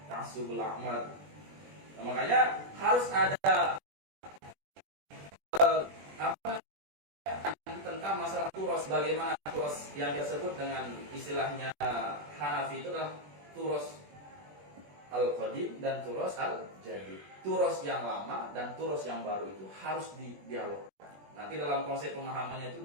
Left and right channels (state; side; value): late; left; 20 ms